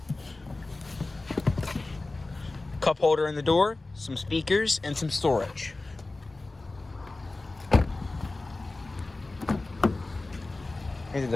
cup holder in the door, some speakers, and some storage. Into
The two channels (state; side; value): quieter; right; 3.2 dB